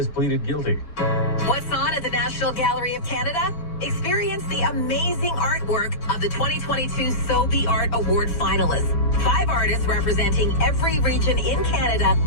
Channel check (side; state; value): right; late; 6.8 ms